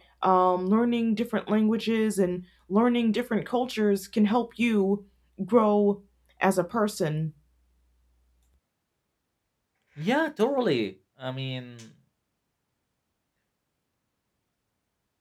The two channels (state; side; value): identical; both; correlation 1.00